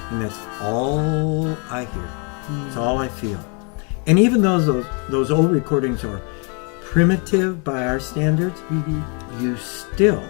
and that's all I hear. It's all I feel. And even though those old recordings are primitive by our standards, you still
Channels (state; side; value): quieter; right; 36.6 dB